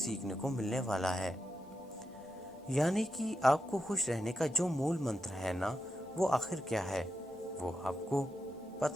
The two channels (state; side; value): normal; both; correlation 0.87